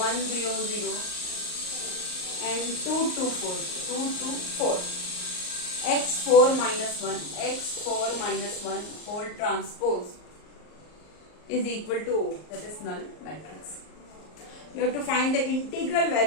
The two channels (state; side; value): late; right; 38 ms